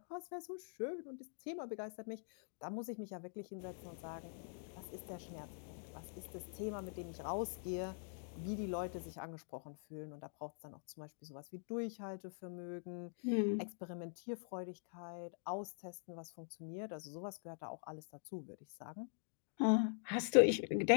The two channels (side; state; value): right; silent; digital silence